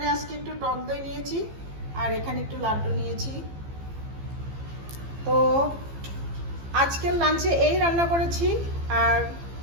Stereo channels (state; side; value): late; left; 15 ms